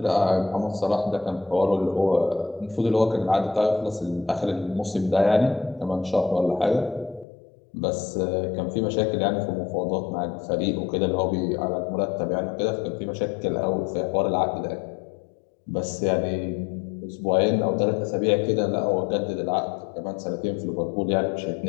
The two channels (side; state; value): right; drops out; at 7.2 s